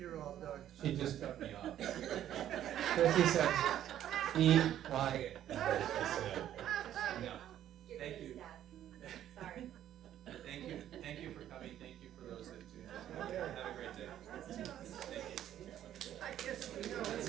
all done. She just cut me off. Chrissy said, Be quiet.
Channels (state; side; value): quieter; left; 11.4 dB